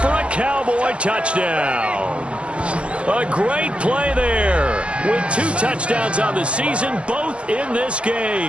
for a Cowboy touchdown. A great play there with 2 touchdowns on the season, both in this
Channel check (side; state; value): left; late; 0.060 ms